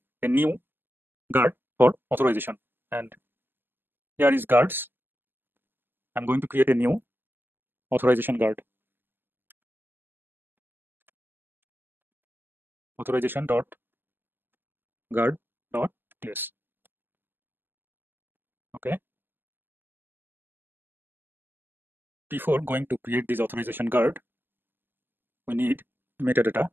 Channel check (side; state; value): left; late; 0.097 ms